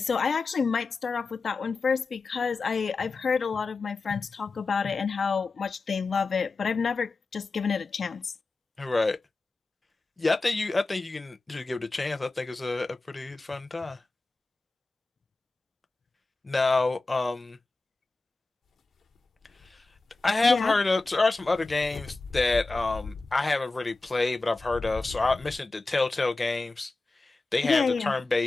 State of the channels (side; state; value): right; quieter; 3.6 dB